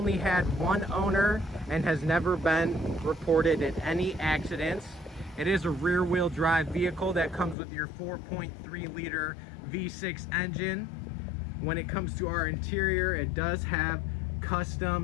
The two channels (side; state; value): right; drops out; at 7.6 s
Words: had one owner, and has never been reported in any accidents. It is a rear-wheel drive vehicle that comes with your 4.3 liter V6 engine. When it comes to our interior, it does have